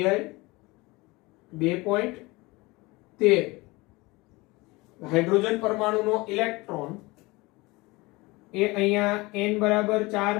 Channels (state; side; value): quieter; right; 23.0 dB